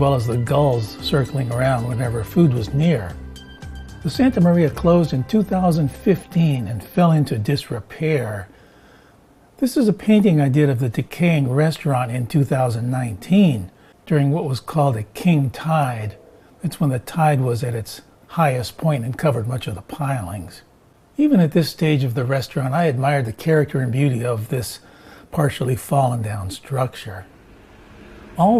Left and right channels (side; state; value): both; identical; correlation 1.00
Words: as the gulls circling around whenever food was near. The Santa Maria closed in 2015 and fell into disrepair. This is a painting I did of the decaying restaurant in 2019 during what was called a king tide. It's when the tide was at its highest point and covered much of the pilings. Even at this stage of the restaurant, I admired the character and beauty of this partially fallen down structure.